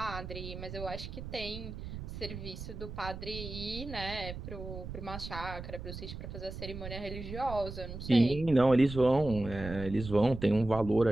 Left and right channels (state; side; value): noise; right; rumble, 9 dB below the sound